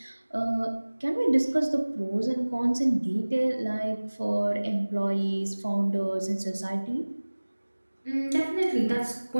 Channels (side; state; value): both; inverted; correlation -1.00